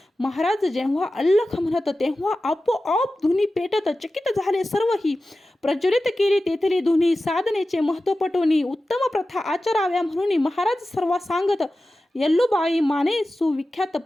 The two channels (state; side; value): normal; both; correlation 0.94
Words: महाराज जेव्हा अल्लख म्हणत, तेव्हा आपोआप धुनी पेटत, चकित झाले सर्वही, प्रज्वलित केली तेथली धुनी, साधनेचे महत्व पटवून, उत्तम प्रथा आचराव्या म्हणून महाराज सर्व सांगत, यल्लूबाई माने सुविख्यात